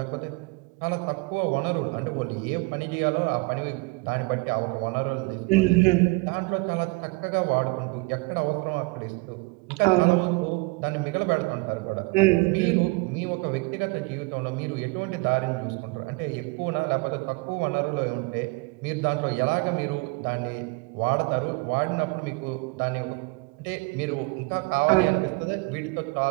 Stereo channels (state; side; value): quieter; left; 27.4 dB